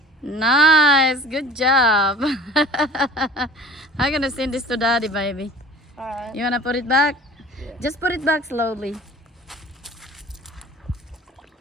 Nice. Good job. I'm gonna send this to Daddy, baby. All right. You wanna put it back? Yeah. Just put it back slowly.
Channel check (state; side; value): normal; both; correlation 0.45